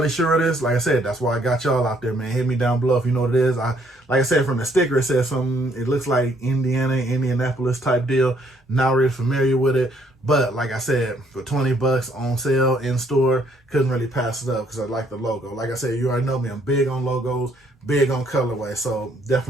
sure it is. Like I said, that's why I got y'all out there, man. Hit me down below if you know what it is. Like I said, from the sticker, it says something. It looks like Indianapolis type deal. Not really familiar with it. But like I said, for 20 bucks on sale in store, couldn't really pass it up because I like the logo. Like I said, you already know me. I'm big on logos, big on colorway. So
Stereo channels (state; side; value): normal; both; correlation 0.67